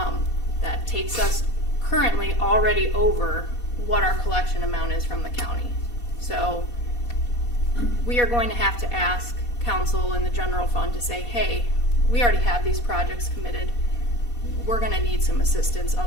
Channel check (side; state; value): right; late; 4.2 ms